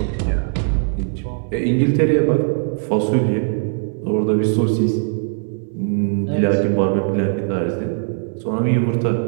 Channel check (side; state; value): left; silent; digital silence